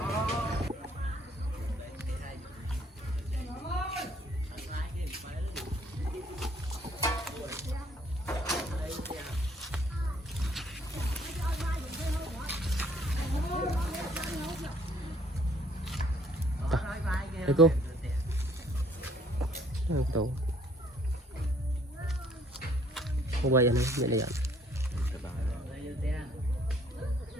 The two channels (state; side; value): normal; both; correlation 0.62